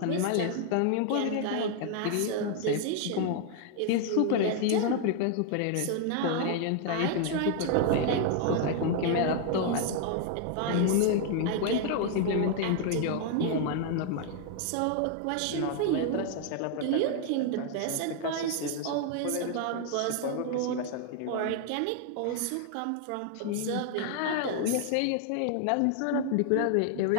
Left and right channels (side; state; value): both; different; correlation 0.00